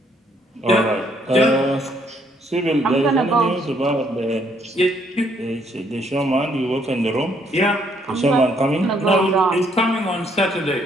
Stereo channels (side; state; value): both; normal; correlation 0.69